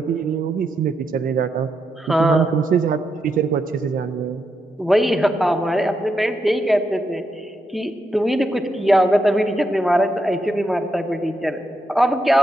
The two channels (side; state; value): both; normal; correlation 0.82